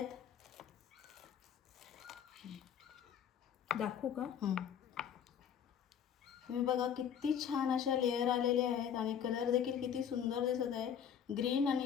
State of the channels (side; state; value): right; quieter; 8.4 dB